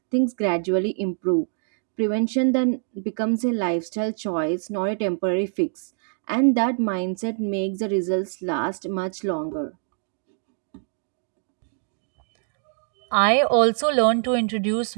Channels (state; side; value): silent; left; digital silence